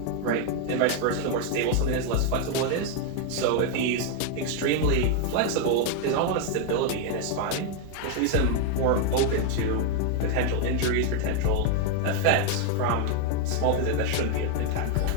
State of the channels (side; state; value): both; different; correlation 0.00